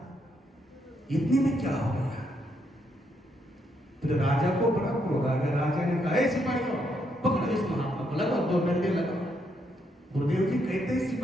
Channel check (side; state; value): both; normal; correlation 0.76